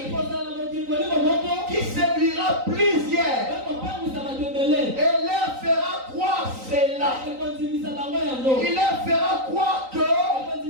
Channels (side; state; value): left; late; 3.9 ms